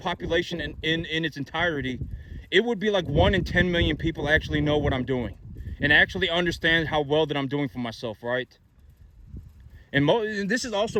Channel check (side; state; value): both; identical; correlation 1.00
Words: in its entirety, it would be like 1 in 10 million people actually know what I'm doing and actually understand how well that I'm doing for myself, right? And this is also